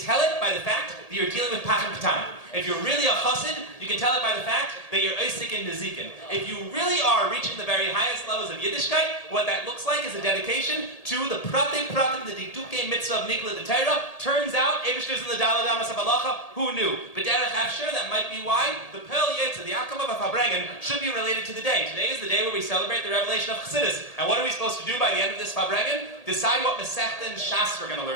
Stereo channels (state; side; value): late; right; 1.8 ms